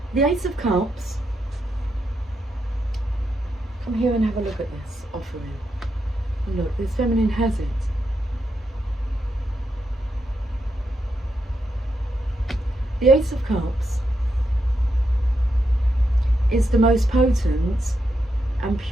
The Ace of Cups, come here and have a look at this offering. And look, this feminine has it. The Ace of Cups is the most potent and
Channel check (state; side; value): normal; both; correlation 0.83